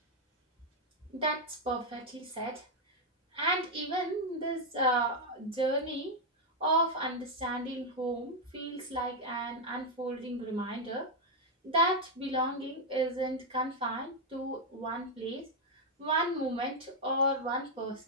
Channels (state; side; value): normal; both; correlation 0.01